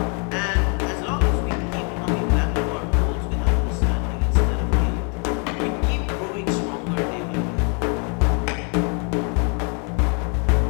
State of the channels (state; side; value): quieter; right; 37.9 dB